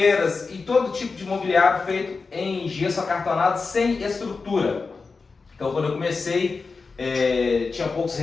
e todo tipo de mobiliário feito em gesso acartonado sem estrutura. Então quando eu comecei, tinha poucos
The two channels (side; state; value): right; quieter; 4.4 dB